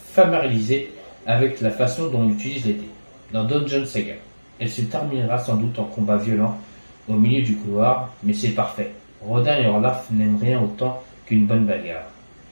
familiariser avec la façon dont on utilise les dés. Dans Dungeon Saga, elle se terminera sans doute en combat violent au milieu du couloir, mais c'est parfait. Rodin et Orlaf n'aiment rien autant qu'une bonne bagarre.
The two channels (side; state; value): both; inverted; correlation -1.00